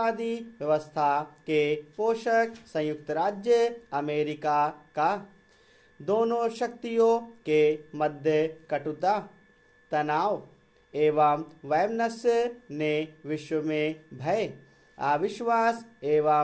व्यवस्था के पोषक संयुक्त राज्य अमेरिका का। दोनों शक्तियों के मध्य कटुता, तनाव एवं वैमनस्य ने विश्व में भय, अविश्वास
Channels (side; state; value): both; identical; correlation 1.00